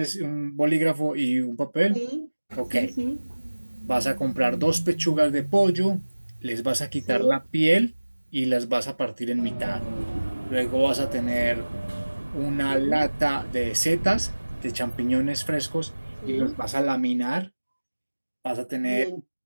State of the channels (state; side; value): inverted; both; correlation -1.00